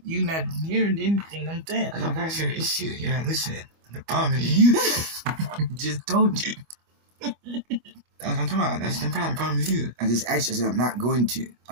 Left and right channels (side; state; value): left; late; 25 ms